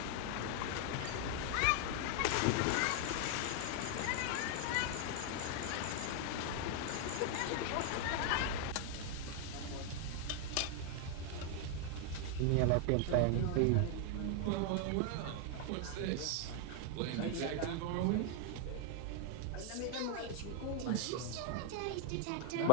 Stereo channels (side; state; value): both; different; correlation 0.00